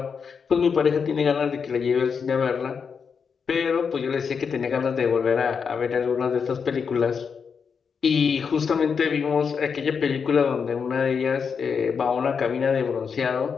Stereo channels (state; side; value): quieter; right; 6.1 dB